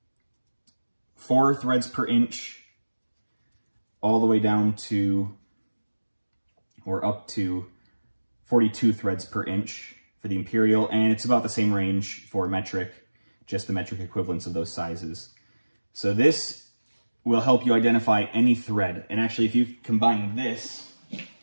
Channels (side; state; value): both; inverted; correlation -1.00